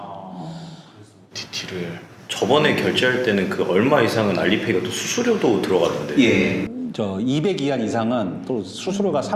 TT를 저번에 결제할 때는 그 얼마 이상은 알리페이가 또 수수료도 들어가던데. 예. 저 200 이하 이상은 또 수수료가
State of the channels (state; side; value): identical; both; correlation 1.00